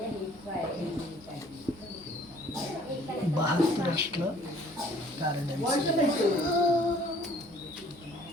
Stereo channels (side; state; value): both; normal; correlation 0.56